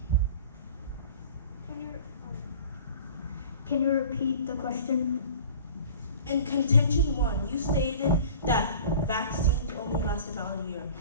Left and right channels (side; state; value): both; inverted; correlation -0.43